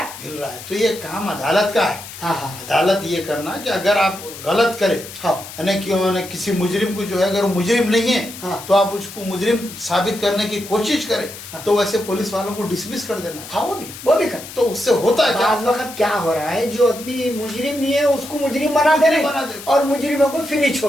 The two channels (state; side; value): noise; left; hiss, 13 dB below the sound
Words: मिल रहा है। तो ये काम अदालत का है। हाँ हाँ अदालत ये करना कि अगर आप गलत करें, हाँ। यानी क्यों ना किसी मुजरिम को जो है, अगर वो मुजरिम नहीं है, हाँ। तो आप उसको मुजरिम साबित करने की कोशिश करें, हाँ। तो वैसे पुलिस वालों को डिसमिस कर देना है। हाँ, वो भी करना। तो उससे होता है क्या? बाज़ वक्त क्या हो रहा है, जो आदमी मुजरिम नहीं है उसको मुजरिम बना दे रहे बना हैं दे। और मुजरिमों को फ्री